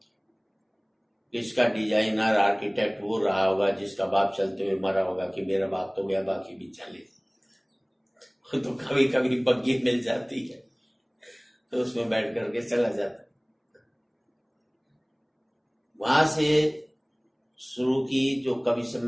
किसका डिजाइनर आर्किटेक्ट वो रहा होगा जिसका बाप चलते हुए मरा होगा कि मेरा बाप तो गया, बाकी भी चले। तो कभी कभी बग्गी मिल जाती है तो उसमें बैठ करके चला जाता। वहां से शुरू की। जो कवि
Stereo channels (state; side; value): identical; both; correlation 1.00